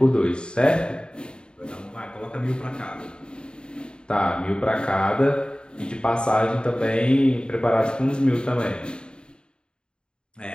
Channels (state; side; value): late; right; 0.050 ms